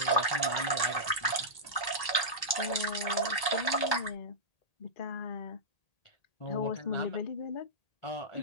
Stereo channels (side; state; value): right; late; 1.8 ms